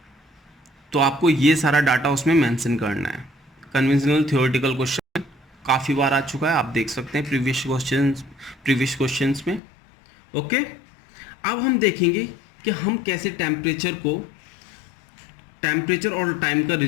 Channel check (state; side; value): drops out; right; at 9.6 s